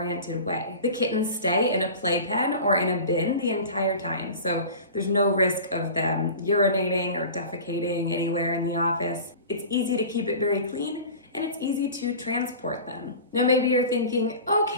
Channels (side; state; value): both; inverted; correlation -0.36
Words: way. The kittens stay in a playpen or in a bin the entire time, so there's no risk of them urinating or defecating anywhere in the office. It's easy to keep it very clean, and it's easy to transport them. Now maybe you're thinking,